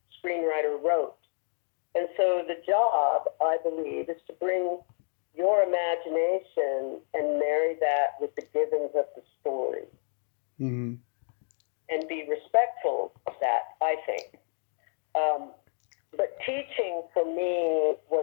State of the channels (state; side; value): silent; right; 58 dB below the other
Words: screenwriter wrote. And so the job, I believe, is to bring your imagination and marry that with the givens of the story. Mm-hmm. And be respectful of that, I think. But teaching for me